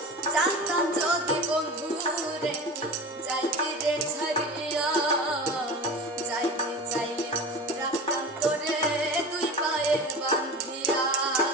জানতাম যদি বন্ধু রে যাইবি রে ছাড়িয়া, যাইতে চাইলে রাখতাম তোরে দুই পায়ে বাঁধিয়া।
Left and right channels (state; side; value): normal; both; correlation 0.32